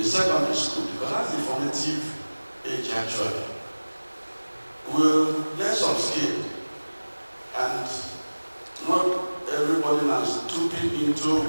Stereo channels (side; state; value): both; inverted; correlation -1.00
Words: secondary school, because that's the formative age actually, will learn some skill, and not everybody now is stooping into